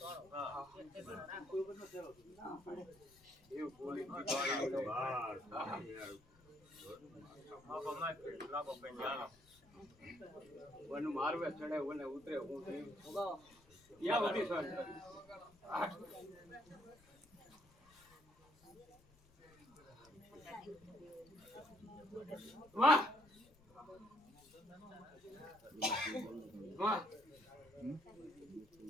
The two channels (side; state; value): left; noise; rumble, 27 dB below the sound